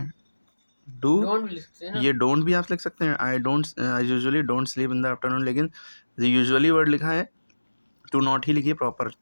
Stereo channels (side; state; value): both; inverted; correlation -1.00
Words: डू, ये डोंट भी आप लिख सकते हैं, I don't, I usually don't sleep in the afternoon, लेकिन यूजुअली वर्ड लिखा है टू नॉट ही लिखिए प्रॉपर